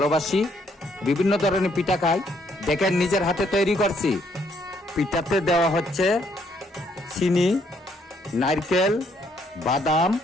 বিভিন্ন ধরনের পিঠা খাই। দেখেন, নিজের হাতে তৈরি করছি। পিঠাতে দেওয়া হচ্ছে চিনি, নারকেল, বাদাম,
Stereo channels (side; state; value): both; normal; correlation 0.70